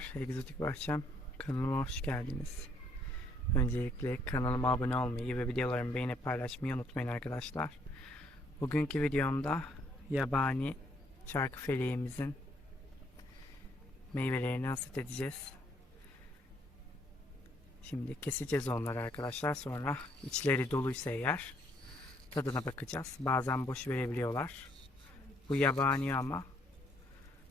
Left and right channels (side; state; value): both; normal; correlation 0.68